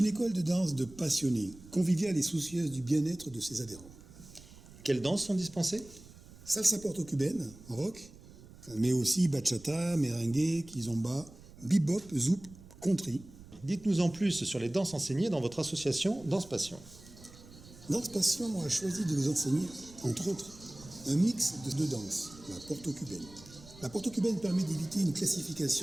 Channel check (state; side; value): noise; right; rumble, 20 dB below the sound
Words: école de danse de passionnés, conviviale et soucieuse du bien-être de ses adhérents. Quelles danses sont dispensées ? Salsa porto-cubaine, rock, mais aussi bachata, merengue, kizomba, bebop, zouk, country. Dites-nous en plus sur les danses enseignées dans votre association Danse Passion. Danse Passion a choisi de vous enseigner, entre autres, un mix de deux danses, la porto-cubaine. La porto-cubaine permet d'éviter une